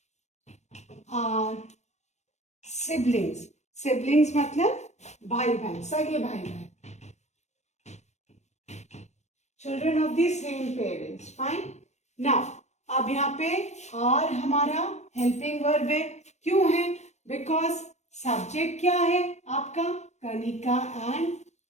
are siblings. Siblings मतलब भाई बहन, सगे भाई बहन. Children of the same parents. Fine. Now अब यहाँ पे आर हमारा हेल्पिंग वर्ब है. क्यों है? बिकॉज सब्जेक्ट क्या है आपका? कनिका एंड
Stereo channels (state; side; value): late; right; 0.33 ms